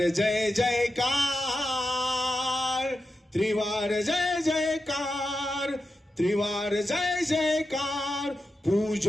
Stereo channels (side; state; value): both; normal; correlation 0.89